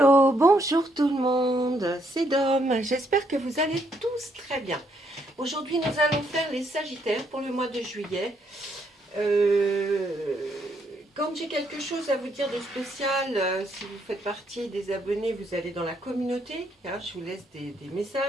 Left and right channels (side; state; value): both; normal; correlation 0.73